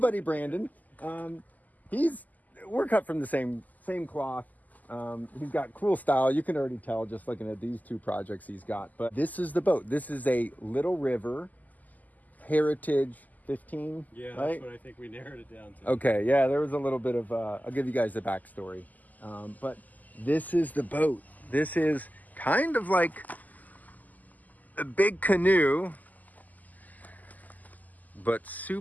Brandon. We're cut from the same cloth. He's got cool style. You can already tell just looking at these 2 projects he's got. But this is the boat. This is a Little River Heritage 15. Yeah, right? That's what I think we narrowed it down to. Okay, yeah, there was a little bit of, I'll give you guys the backstory. But this is the boat. This is kind of like a big canoe, but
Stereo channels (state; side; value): late; right; 0.081 ms